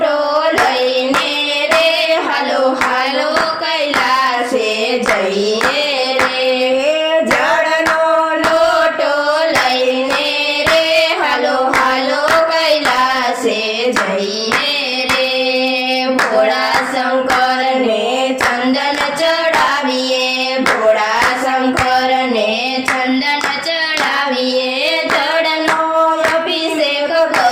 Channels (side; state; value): both; identical; correlation 1.00